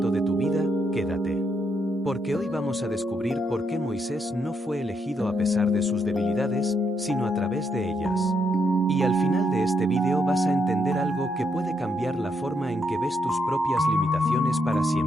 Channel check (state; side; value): normal; both; correlation 0.78